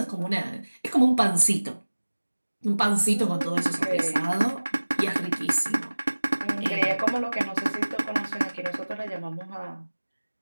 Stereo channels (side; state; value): both; inverted; correlation -1.00